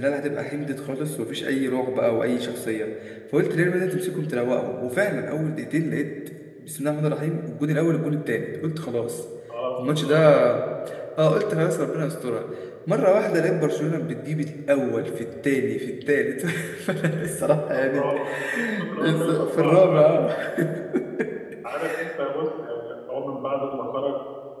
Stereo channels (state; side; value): identical; both; correlation 1.00